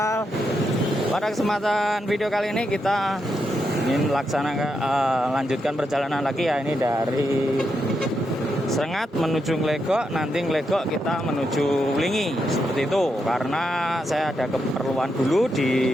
Pada kesempatan video kali ini kita ingin lanjutkan perjalanan lagi ya. Ini dari Srengat menuju Nglegok. Nanti Nglegok kita menuju Wlingi. Seperti itu. Karena saya ada keperluan dulu di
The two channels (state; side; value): normal; both; correlation 0.83